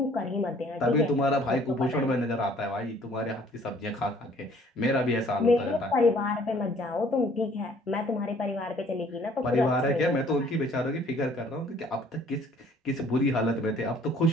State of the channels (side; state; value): both; normal; correlation 0.57